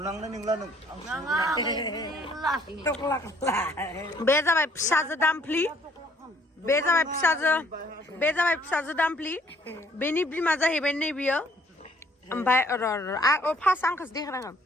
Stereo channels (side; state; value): both; normal; correlation 0.62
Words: नंला नों बे जाबाय फिसाजो दामफ्लि बे जाबाय फिसाजो दामफ्लि बेनि बिमा जाहैबाय नै बियो ओमफ्राय फार्स्ट आंखौसो देखायनांगोन